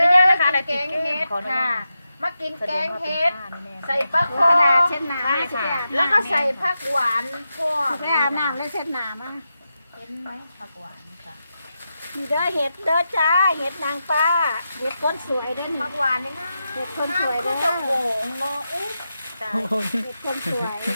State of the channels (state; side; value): inverted; both; correlation -0.89